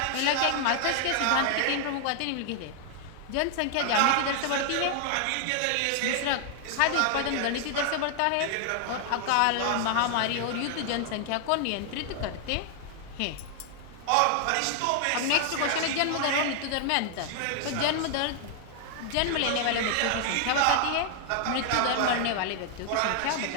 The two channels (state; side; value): different; both; correlation 0.00